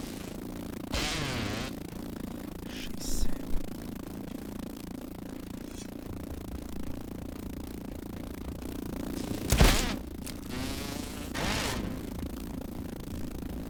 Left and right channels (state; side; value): identical; both; correlation 1.00